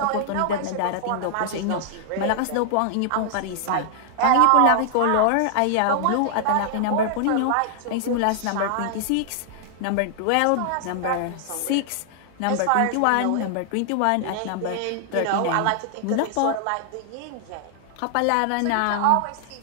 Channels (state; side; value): different; both; correlation 0.00